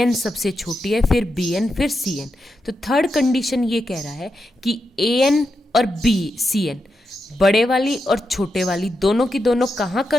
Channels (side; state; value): both; normal; correlation 0.86